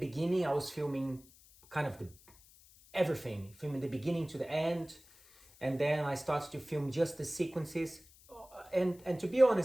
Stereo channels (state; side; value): noise; left; hiss, 25 dB below the sound